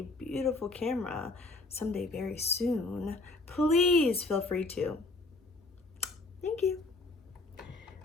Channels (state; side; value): quieter; right; 3.2 dB